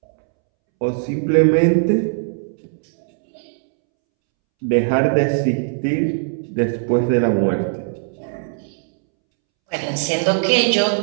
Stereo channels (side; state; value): left; silent; 66 dB below the other